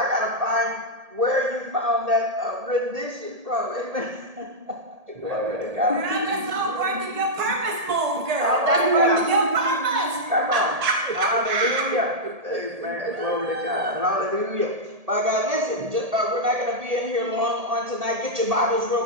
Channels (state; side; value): late; left; 1.8 ms